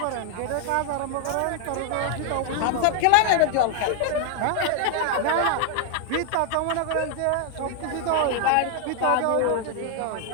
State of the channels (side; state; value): both; different; correlation 0.00